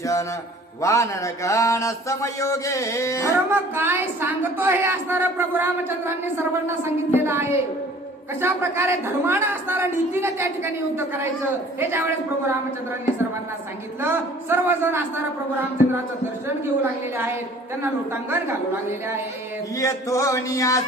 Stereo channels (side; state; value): both; normal; correlation 0.51